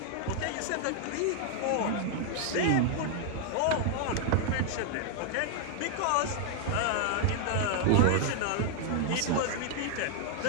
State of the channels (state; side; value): different; both; correlation 0.00